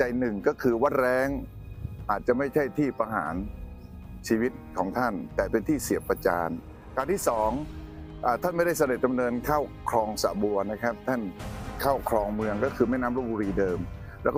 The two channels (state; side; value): identical; both; correlation 1.00